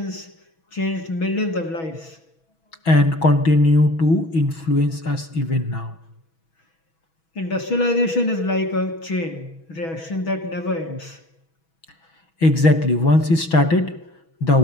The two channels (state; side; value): late; right; 6.2 ms